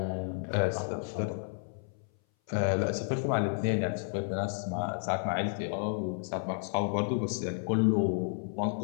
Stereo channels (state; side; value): silent; right; 57 dB below the other